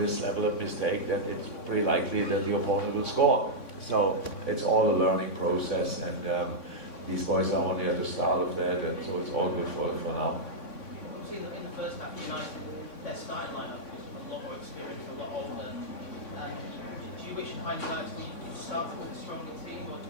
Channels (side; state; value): right; late; 3.6 ms